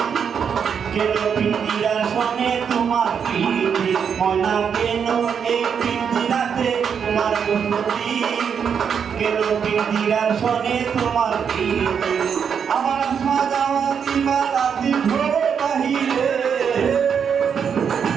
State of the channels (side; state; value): left; quieter; 7.1 dB